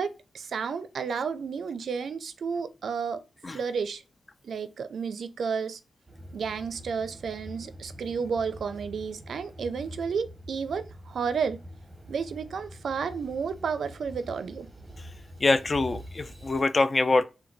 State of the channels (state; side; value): normal; both; correlation 0.86